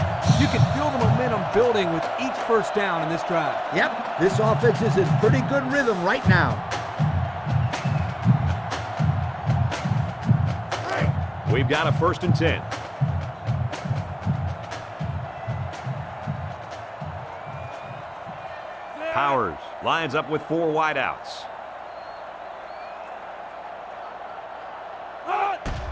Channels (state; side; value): identical; both; correlation 1.00